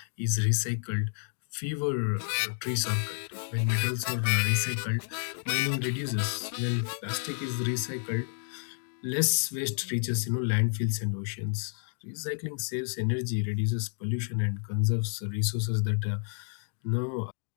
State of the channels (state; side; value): silent; right; digital silence